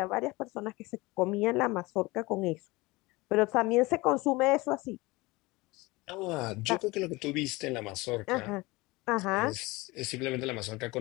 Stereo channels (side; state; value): right; quieter; 22.4 dB